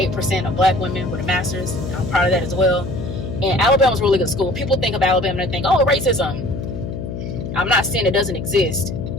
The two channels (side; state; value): left; noise; hum, 7 dB below the sound